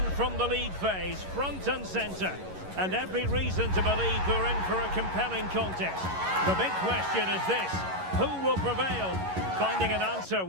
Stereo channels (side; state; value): left; late; 11 ms